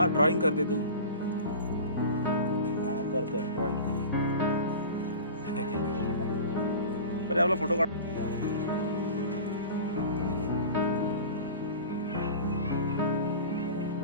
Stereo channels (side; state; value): both; inverted; correlation -0.36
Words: ड्रॉइंग करते तू। करते ड्रॉइंग। परी आपला फोटो काढ।